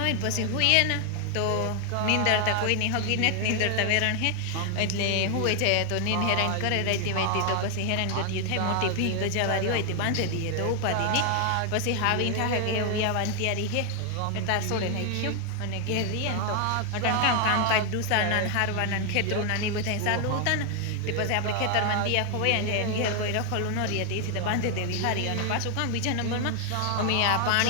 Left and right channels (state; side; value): different; both; correlation 0.00